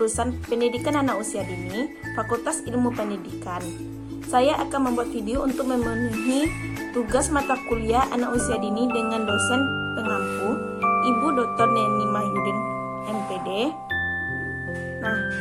Pendidikan Anak Usia Dini, Fakultas Ilmu Pendidikan. Saya akan membuat video untuk memenuhi tugas mata kuliah anak usia dini dengan dosen pengampu, Ibu Dr. Neni Mahyudin, MPD. Nah,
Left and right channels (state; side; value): identical; both; correlation 1.00